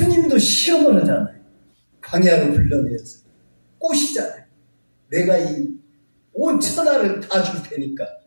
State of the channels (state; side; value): inverted; both; correlation -1.00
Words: 시험을 하잖아요. 광야로 불러내서 꼬시잖아요. 내가 이 온 천하를 다 줄 테니까.